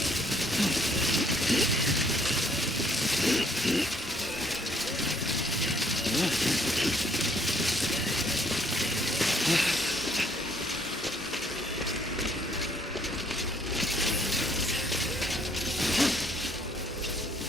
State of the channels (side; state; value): both; normal; correlation 0.65